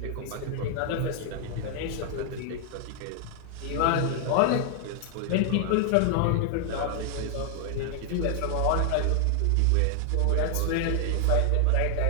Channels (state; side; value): different; both; correlation 0.00